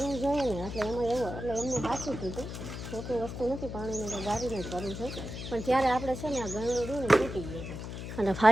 જોઈએ ને, એટલે એમાં એવું એટલે એમને સાચું કીધું. ખોટી વસ્તુ નથી, પાણીને તો ગારીને જ ભરવું છે. પણ ત્યારે આપણે છે ને આ ગળણું રહ્યું ને તૂટી ગયું છે. અને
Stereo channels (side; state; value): left; noise; hum, 8 dB below the sound